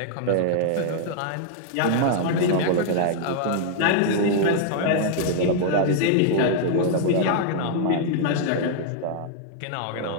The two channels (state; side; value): different; both; correlation -0.01